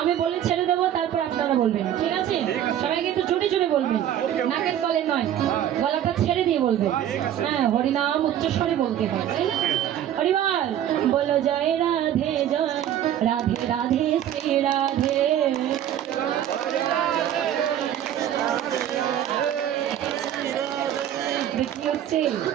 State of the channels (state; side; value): quieter; left; 10.9 dB